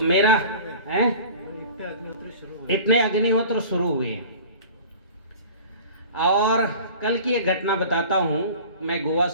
मेरा है इतने अग्निहोत्र शुरू हुए। और कल की एक घटना बताता हूँ। मैं गोवा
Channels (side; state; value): both; inverted; correlation -0.41